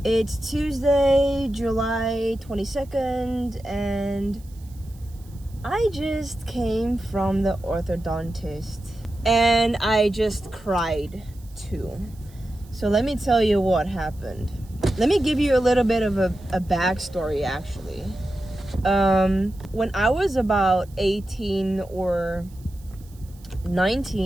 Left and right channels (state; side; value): noise; right; hiss, 27 dB below the sound